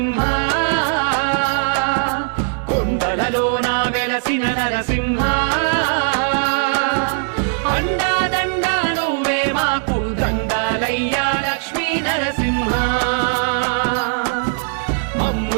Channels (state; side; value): silent; left; 65 dB below the other